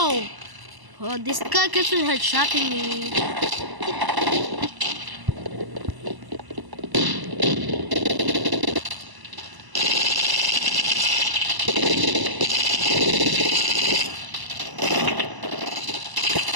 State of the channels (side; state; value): left; late; 1.0 ms